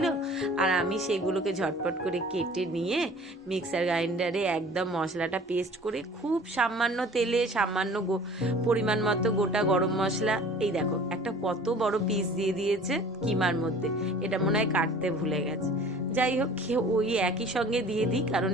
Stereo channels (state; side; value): normal; both; correlation 0.47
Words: আর আমি সেগুলোকে ঝটপট করে কেটে নিয়ে মিক্সার গ্রাইন্ডারে একদম মশলাটা পেস্ট করে খুব সামান্য তেলে সামান্য পরিমাণ মতো গোটা গরম মশলা, এই দেখো একটা কত বড় পিস দিয়ে দিয়েছে কিমার মধ্যে, এটা মনে হয় কাটতে ভুলে গেছে। যাই হোক ওই একই সঙ্গে দিয়ে দিই, কারণ